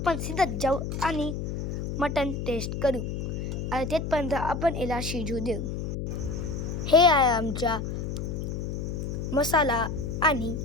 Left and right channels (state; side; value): noise; left; hum, 4 dB below the sound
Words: सिद्धत जाऊ आणि मटण टेस्ट करू. आणि तेथपर्यंत आपण याला शिजू देऊ. हे आहे आमचा मसाला आणि